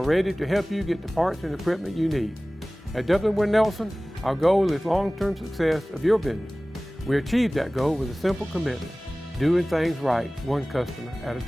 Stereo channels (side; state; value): both; normal; correlation 0.98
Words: ready to help you get the parts and equipment you need. At Dublin Nelson, our goal is long-term success of your business. We achieve that goal with a simple commitment: doing things right, one customer at a